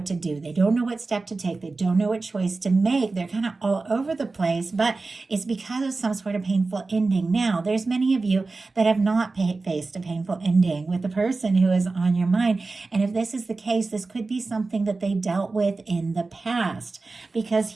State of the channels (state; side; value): quieter; left; 3.7 dB